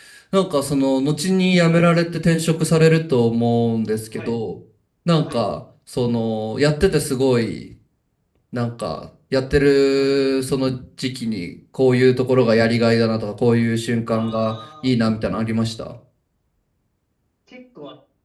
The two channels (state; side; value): identical; both; correlation 1.00